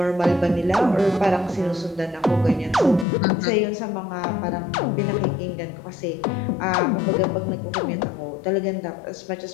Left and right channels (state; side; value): drops out; right; at 3.1 s